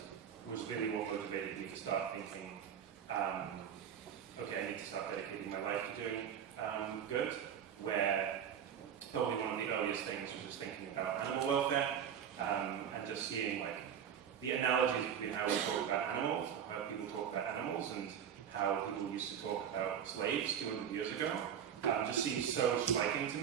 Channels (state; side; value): quieter; left; 8.6 dB